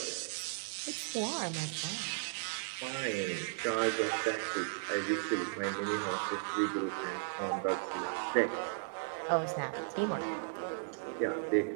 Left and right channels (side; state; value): left; silent; digital silence